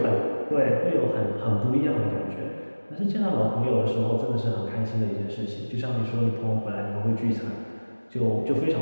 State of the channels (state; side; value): inverted; both; correlation -1.00